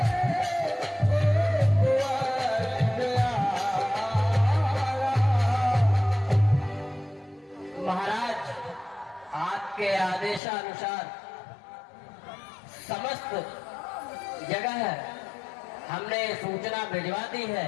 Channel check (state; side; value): drops out; right; at 10.4 s